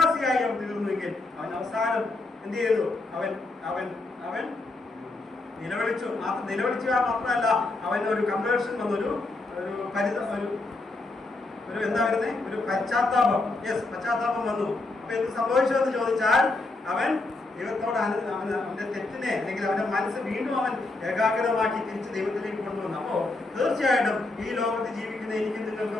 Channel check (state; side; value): quieter; right; 3.2 dB